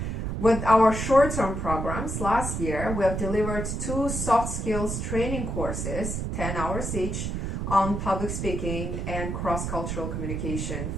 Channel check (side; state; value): right; noise; rumble, 3 dB below the sound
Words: With our short-term programs, last year we have delivered 2 soft skills training courses, 10 hours each, on public speaking and cross-cultural communication